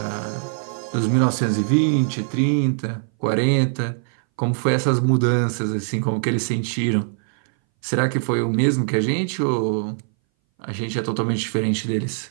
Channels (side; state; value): left; silent; 61 dB below the other